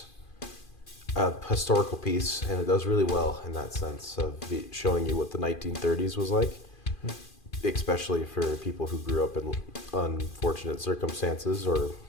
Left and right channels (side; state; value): right; late; 2.4 ms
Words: a historical piece, and it does really well in that sense of showing you what the 1930s was like, especially for people who grew up in unfortunate circumstances or,